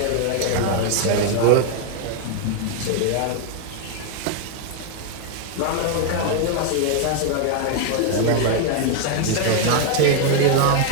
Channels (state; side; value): different; both; correlation 0.00